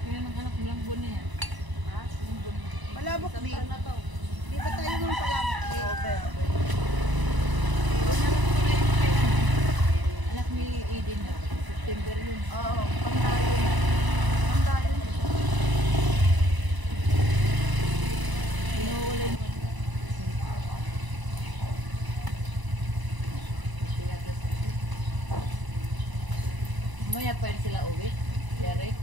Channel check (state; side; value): late; left; 1.0 ms